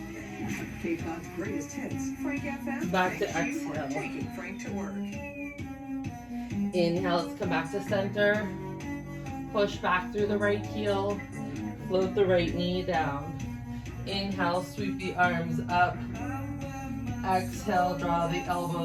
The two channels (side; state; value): both; identical; correlation 1.00